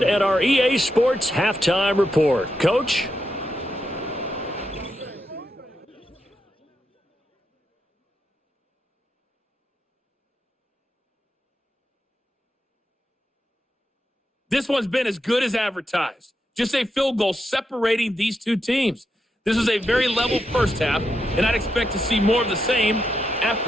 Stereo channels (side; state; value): both; normal; correlation 0.84